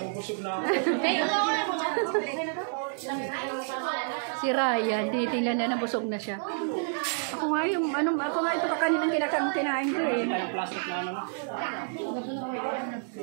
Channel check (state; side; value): silent; left; digital silence